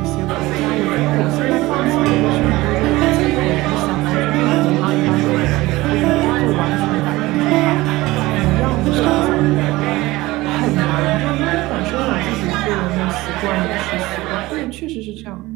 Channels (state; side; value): quieter; left; 19.4 dB